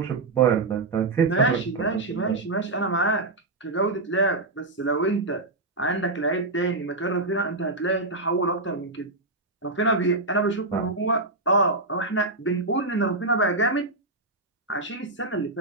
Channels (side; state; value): left; quieter; 3.1 dB